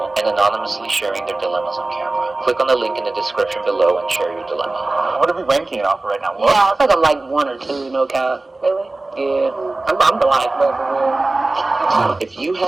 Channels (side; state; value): left; quieter; 3.1 dB